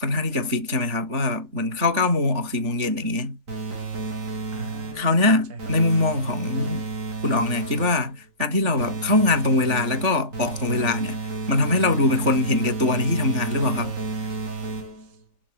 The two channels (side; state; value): left; late; 3.5 ms